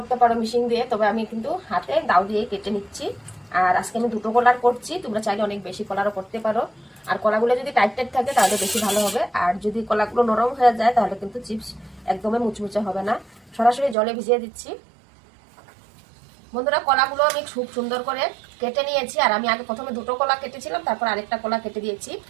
পারো, মেশিন দিয়ে, তবে আমি কিন্তু হাতে দাও দিয়ে কেটে নিচ্ছি। আর আজকে আমি দুটো কলার করছি, তোমরা চাইলে অনেক বেশি কলারও করতে পারো। আর কলাগুলো যদি টাইট টাইট থাকে তাহলে বেশি ভালো হবে, আর যদি কলাগুলো নরম হয়ে যায় তাহলে কিন্তু চিপস একদমই মুচমুচে হবে না। সরাসরি জলে ভিজিয়ে দিচ্ছি। বন্ধুরা, কলাগুলো আমি খুব সুন্দর করে কেটে নিয়েছি। আর আমি আগে প্রথমে দুটো কলা কেটেছিলাম, তারপর আরেকটা কলা কেটে দিয়েছি।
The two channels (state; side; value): drops out; left; at 14.0 s